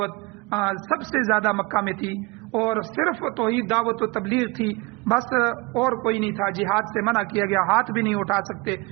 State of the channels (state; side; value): quieter; left; 25.4 dB